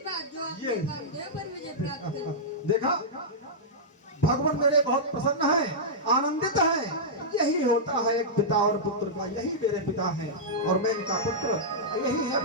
बात जो आपने ये- कामदेव पर विजय प्राप्त की। देखा, भगवान मेरे बहुत प्रसन्न है, आनंदित है। यही होता है एक पिता और पुत्र का, यही मेरे पिता है और मैं इनका पुत्र, यही है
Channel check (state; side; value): normal; both; correlation -0.10